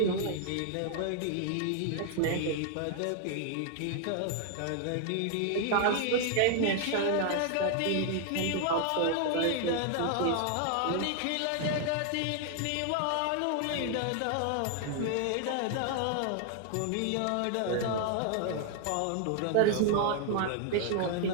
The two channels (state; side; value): different; both; correlation 0.00